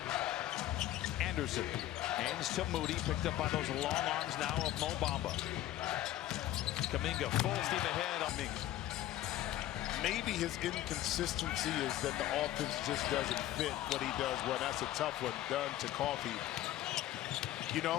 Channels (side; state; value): right; quieter; 13.6 dB